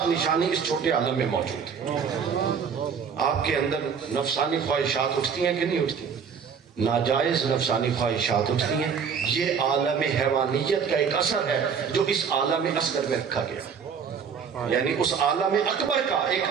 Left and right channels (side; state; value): left; quieter; 6.6 dB